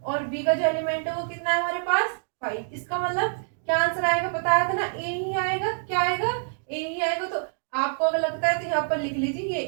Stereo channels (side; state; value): left; silent; digital silence